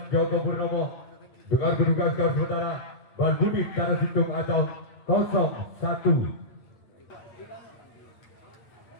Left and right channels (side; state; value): right; late; 8.8 ms